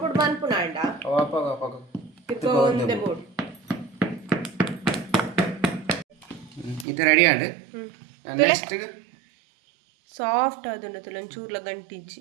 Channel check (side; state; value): left; drops out; at 6.9 s